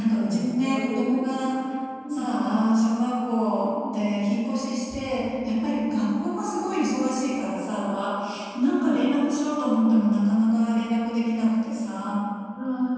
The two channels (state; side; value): identical; both; correlation 1.00